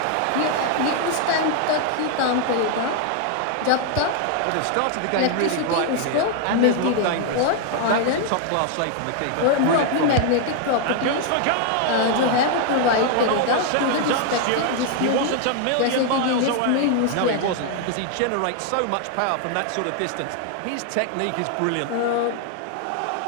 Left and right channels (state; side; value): different; both; correlation 0.00